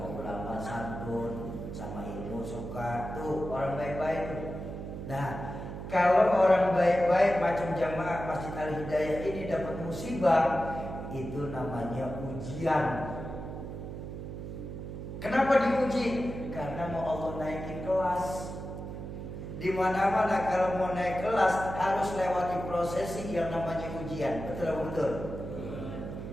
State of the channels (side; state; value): right; noise; hum, 8 dB below the sound